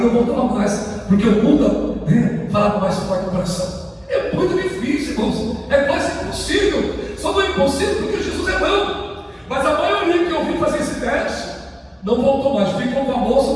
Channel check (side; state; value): both; identical; correlation 1.00